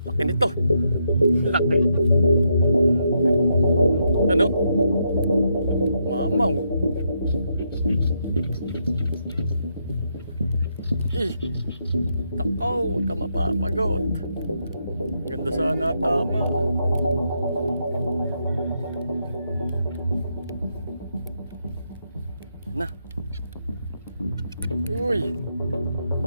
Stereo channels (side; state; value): both; inverted; correlation -0.79